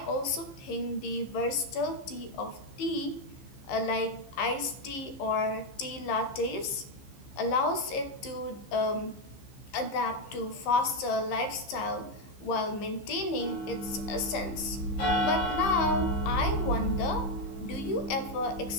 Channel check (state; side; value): late; right; 15 ms